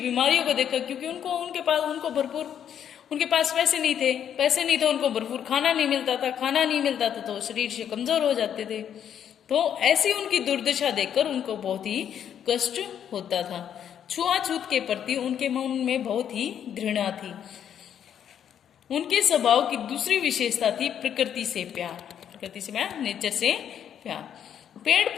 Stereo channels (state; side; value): quieter; right; 9.1 dB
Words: को देखकर, क्योंकि उनके पास पैसे नहीं थे, उनको भरपूर खाना नहीं मिलता था तो शरीर से कमजोर हो जाते थे। तो ऐसी उनकी दुर्दशा देखकर उनको बहुत ही कष्ट होता था। छुआछूत के प्रति उनके मन में बहुत ही घृणा थी। उनके स्वभाव की दूसरी विशेषता थी प्रकृति से प्यार, नेचर से प्यार। पेड़